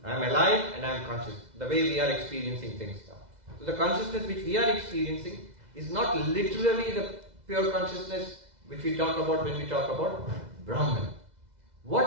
I am alive and I am conscious, the way we are experiencing things now. So the consciousness which we are experiencing is not literally the pure consciousness which we talk about when we talk about Brahman.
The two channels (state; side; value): late; left; 2.0 ms